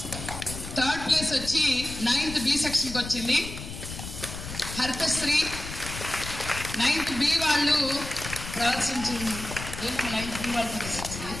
థర్డ్ ప్లేస్ వచ్చి 9th B సెక్షన్కి వచ్చింది హరితశ్రీ. 9th B వాళ్ళు ప్రదర్శించింది. 9th B వాళ్ళు ప్రదర్శించింది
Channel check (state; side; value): noise; left; rumble, 9 dB below the sound